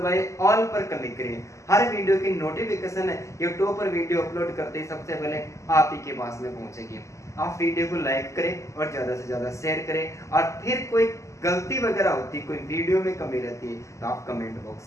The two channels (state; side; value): late; right; 0.15 ms